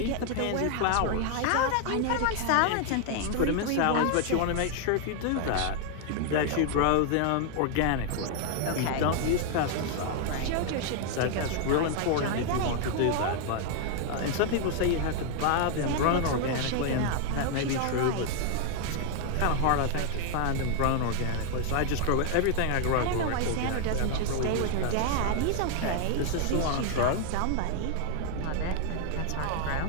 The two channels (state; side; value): different; both; correlation 0.00